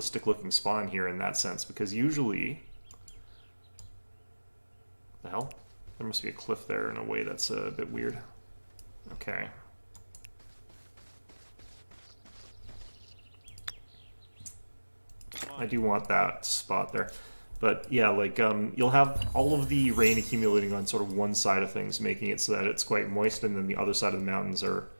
looking spawn here in that sense, because usually... The hell? There must be a cliff there in a way that's a bit weird. Okay. I do want that spot there. But yeah, like, you'll have all of the rain accumulating on sort of one side of things, making it so that it's quite moist, and then the other side of the mountains are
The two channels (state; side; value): inverted; both; correlation -1.00